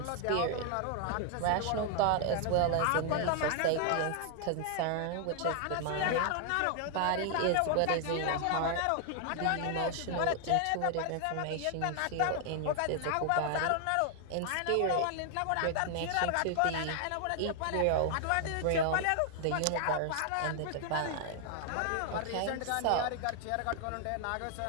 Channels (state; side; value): different; both; correlation 0.00